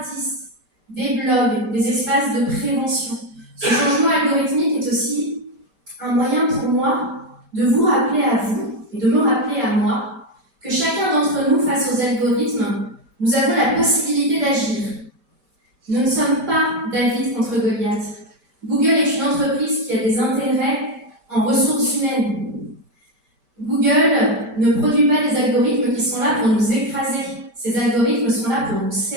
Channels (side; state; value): left; late; 5.1 ms